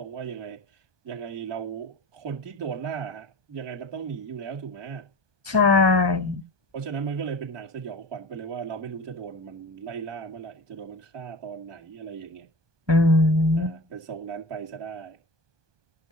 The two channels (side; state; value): left; late; 1.2 ms